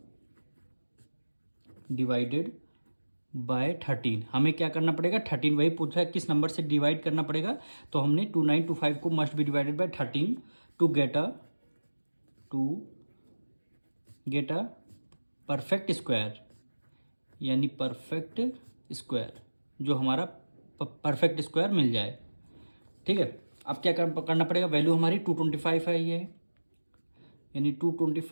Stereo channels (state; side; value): inverted; both; correlation -1.00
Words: बाय 13। हमें क्या करना पड़ेगा, 13 वही पूछा है किस नंबर से डिवाइड करना पड़ेगा, तो हमने 2925 को must be divided by 13 to get a perfect square, यानी परफेक्ट स्क्वायर जो हमारा परफेक्ट स्क्वायर मिल जाए। ठीक है, अब क्या करना पड़ेगा, वैल्यू हमारी 225 है ये, यानी